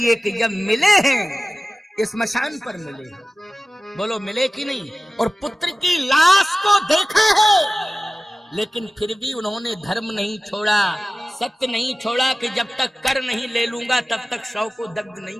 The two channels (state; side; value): normal; both; correlation 0.97